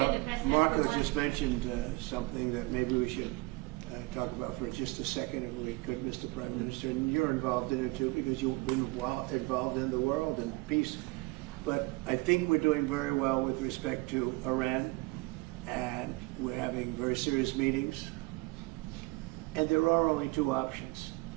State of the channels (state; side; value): quieter; left; 23.6 dB